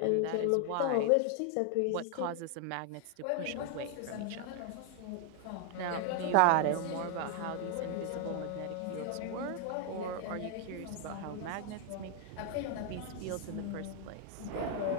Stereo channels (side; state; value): both; different; correlation 0.00